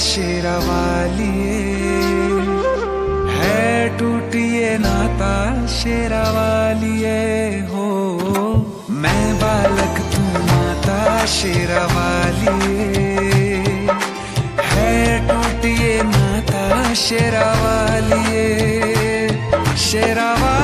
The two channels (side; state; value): both; identical; correlation 1.00